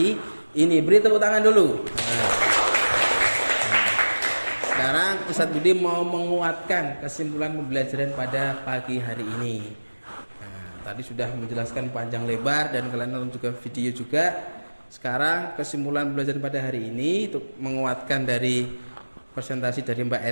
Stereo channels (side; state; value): both; inverted; correlation -1.00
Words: ini. Beri tepuk tangan dulu. Sekarang Ustadz Budi mau menguatkan kesimpulan pembelajaran pada pagi hari ini. Tadi sudah menjelaskan panjang lebar dan kalian nonton juga video juga. Sekarang kesimpulan pembelajaran pada hari ini untuk menguatkan dari presentasi dari Mbak